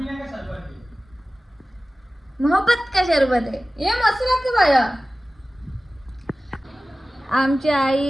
मोहब्बत का शरबत आहे हे मस्त लागतं बाया. आमची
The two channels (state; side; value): normal; both; correlation 0.97